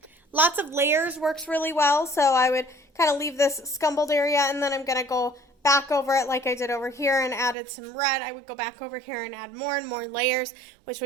Lots of layers works really well, so I would kind of leave this scumbled area, and then I'm going to go back over it like I did over here and added some red. I would go back over here and add more and more layers, which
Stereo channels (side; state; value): left; drops out; at 7.6 s